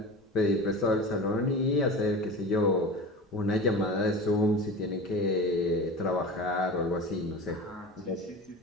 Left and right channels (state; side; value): normal; both; correlation 0.32